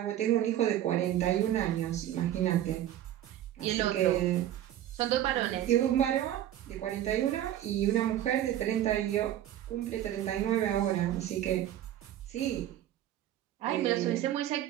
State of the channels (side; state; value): left; quieter; 12.2 dB